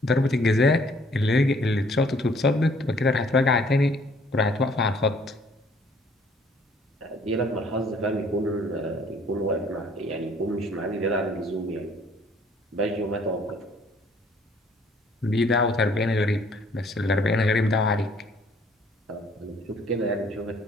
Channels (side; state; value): both; normal; correlation 0.60